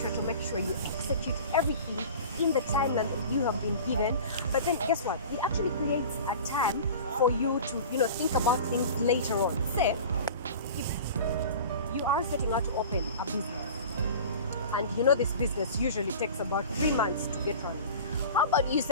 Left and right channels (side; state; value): both; inverted; correlation -0.38